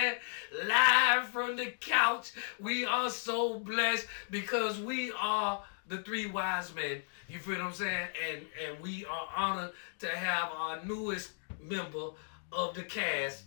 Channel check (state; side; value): silent; right; digital silence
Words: Live from the couch, we are so blessed because we are the 3 wise men. You feel what I'm saying? And we are honored to have our newest member of the cast,